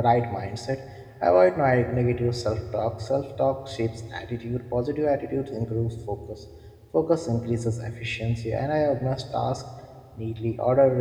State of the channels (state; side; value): identical; both; correlation 1.00